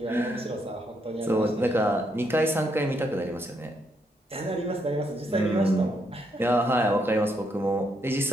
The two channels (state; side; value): normal; both; correlation 0.76